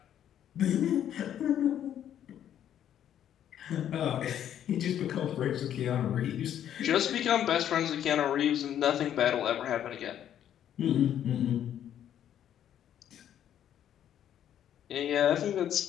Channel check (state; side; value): quieter; right; 10.4 dB